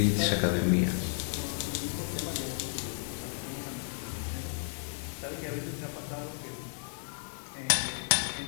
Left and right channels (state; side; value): silent; right; 56 dB below the other